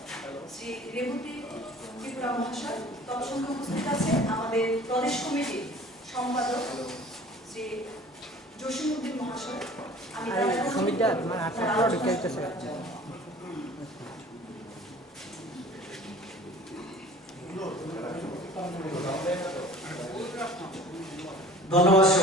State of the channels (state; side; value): normal; both; correlation 0.46